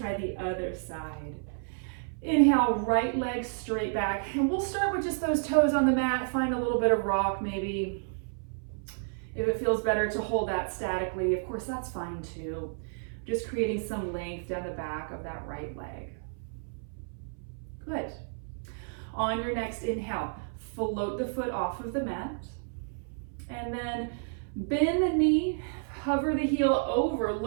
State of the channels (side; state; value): left; silent; 57 dB below the other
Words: the other side. Inhale, right leg straight back. And we'll start with just those toes on the mat. Find a little bit of rock maybe. If it feels better to hold that statically, of course, that's fine too. Just creating some length down the back of that right leg. Good. On your next inhale, float the foot off of the mat. And then bend the knee, hover the heel over,